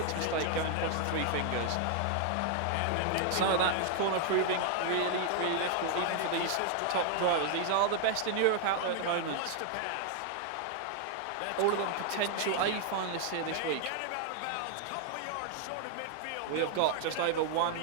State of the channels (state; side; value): different; both; correlation 0.00